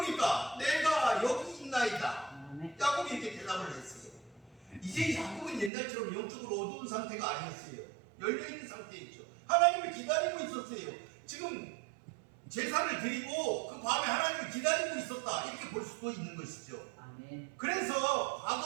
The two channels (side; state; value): left; drops out; at 5.7 s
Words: 내가 여기 있나이다. 야곱이 이렇게 대답을 했어요. 2절 이제 야곱은 옛날처럼 영적으로 어두운 상태가 아니었어요. 열려있는 상태였죠. 하나님을 기다리고 있었어요. 지금 제사를 드리고 그 밤에 하나님을 기다리고 있었다, 이렇게 볼 수도 있는 것이죠. 아멘. 그래서 과거